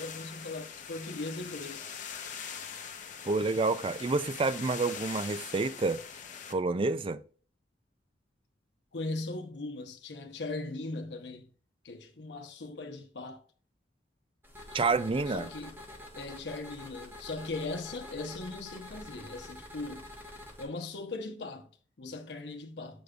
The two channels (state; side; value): normal; both; correlation 0.36